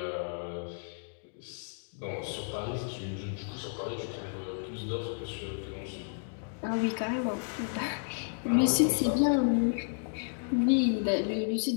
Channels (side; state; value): right; silent; digital silence